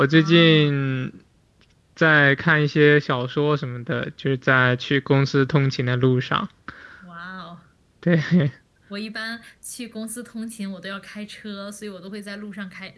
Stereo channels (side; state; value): both; identical; correlation 1.00